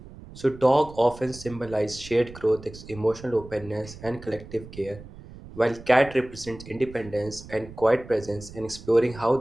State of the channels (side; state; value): right; noise; rumble, 16 dB below the sound